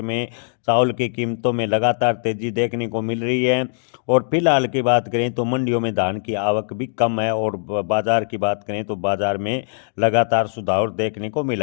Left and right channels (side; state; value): right; silent; digital silence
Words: में चावल की कीमतों में लगातार तेजी देखने को मिल रही है। और फिलहाल की बात करें तो मंडियों में धान की आवक भी कम है और बाजार की बात करें तो बाजार में लगातार सुधार देखने को